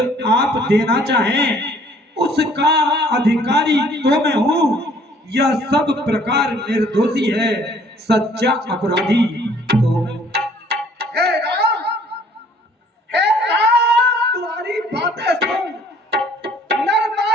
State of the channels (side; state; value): both; normal; correlation 0.58